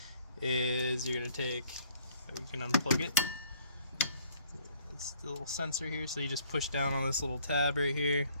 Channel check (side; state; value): both; inverted; correlation -0.61